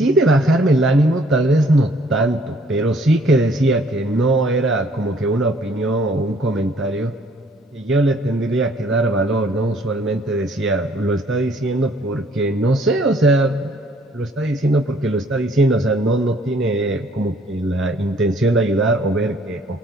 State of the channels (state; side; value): normal; both; correlation 0.61